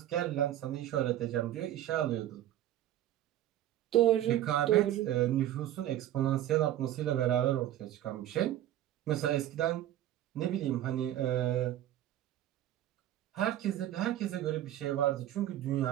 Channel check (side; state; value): left; quieter; 12.7 dB